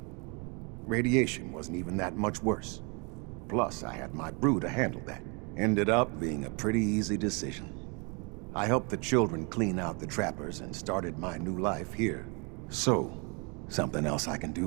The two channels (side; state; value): left; quieter; 32.6 dB